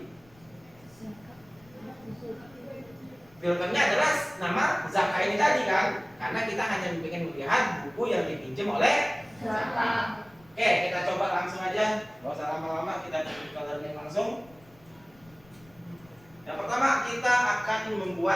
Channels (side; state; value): left; noise; rumble, 28 dB below the sound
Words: Filternya adalah nama Zaka ini tadi kan? Karena kita hanya ingin melihat buku yang dipinjam oleh Zaka. Oke, kita coba langsung aja. Gak usah lama-lama, kita coba learning langsung. Yang pertama kita akan